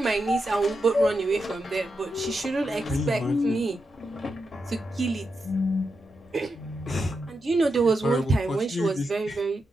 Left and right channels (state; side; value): normal; both; correlation 0.86